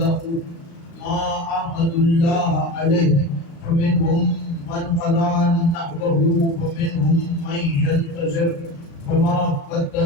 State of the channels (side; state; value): right; late; 36 ms